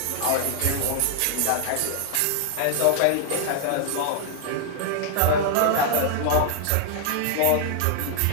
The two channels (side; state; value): both; different; correlation 0.00